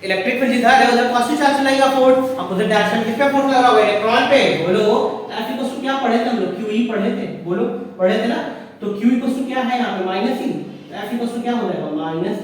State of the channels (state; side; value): identical; both; correlation 1.00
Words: इलेक्ट्रिक फील्ड इधर है, उधर पॉजिटिव चार्ज लगेगा, फोर्स अपोजिट डायरेक्शन किस पे फोर्स लग रहा होगा, इलेक्ट्रॉन पे, बोलो। F इक्वल टू क्या पढ़े थे हम लोग, QE पढ़े थे, बोलो पढ़े थे ना? तो Q इक्वल टू क्या है यहाँ पे, minus E। F equal to क्या हो जाएगा, माइनस